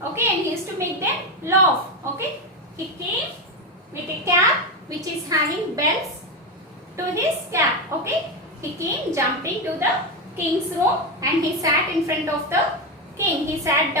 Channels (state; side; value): normal; both; correlation 0.12